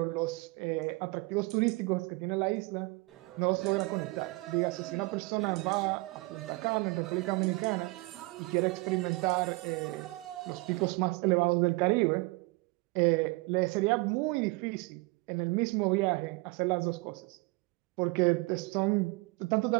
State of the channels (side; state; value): left; quieter; 25.0 dB